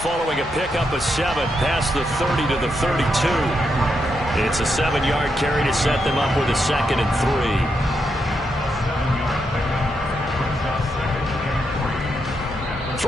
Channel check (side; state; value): both; normal; correlation 0.82